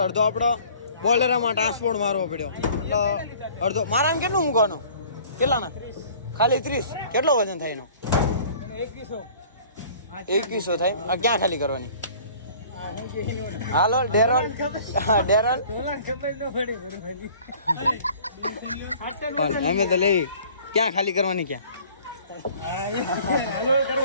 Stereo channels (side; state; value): both; inverted; correlation -0.50